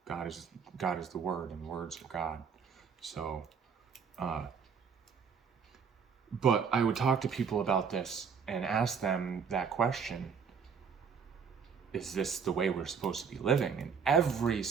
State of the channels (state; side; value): quieter; left; 6.4 dB